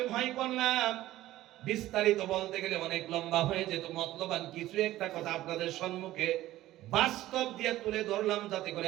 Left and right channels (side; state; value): left; quieter; 15.3 dB